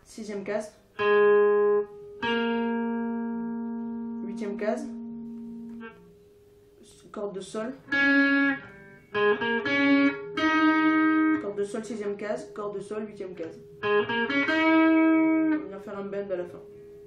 6e case, 8e case, corde de Sol, corde de Sol 6e case, corde de Sol 8e case. On va venir faire un bend à la fin.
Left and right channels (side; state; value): both; identical; correlation 1.00